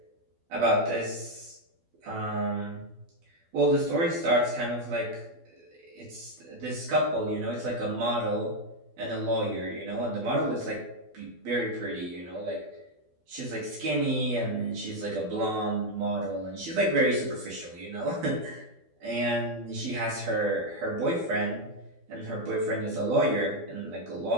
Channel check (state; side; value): late; left; 12 ms